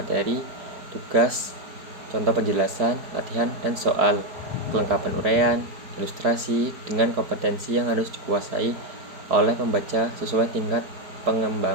tugas, contoh penjelasan, latihan, dan soal, kelengkapan uraian, ilustrasi, dengan kompetensi yang harus dikuasai oleh pembaca sesuai tingkat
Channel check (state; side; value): late; left; 4.7 ms